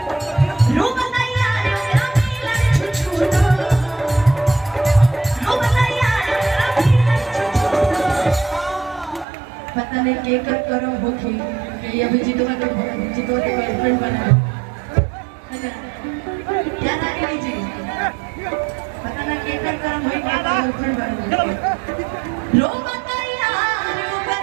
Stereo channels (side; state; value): left; drops out; at 9.2 s